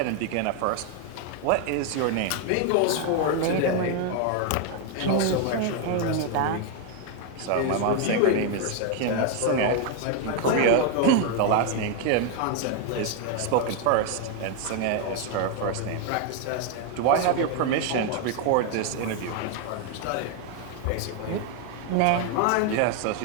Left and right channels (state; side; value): different; both; correlation 0.01